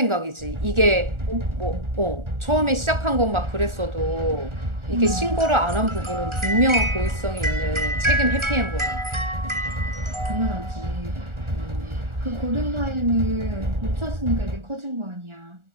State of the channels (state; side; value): late; left; 1.4 ms